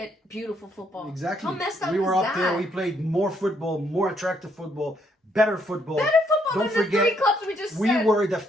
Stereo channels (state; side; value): normal; both; correlation 0.72